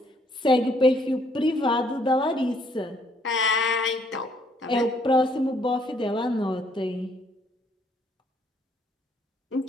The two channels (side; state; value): both; normal; correlation 0.67